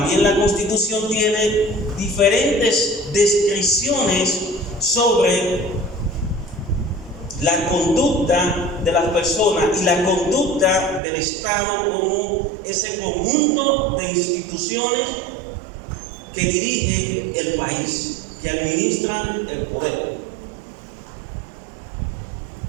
la Constitución tiene diferentes descripciones sobre la conducta de las personas y la conducta del Estado como ese conjunto de instituciones que dirigen el país, que administran el poder.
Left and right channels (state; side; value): drops out; left; at 11.0 s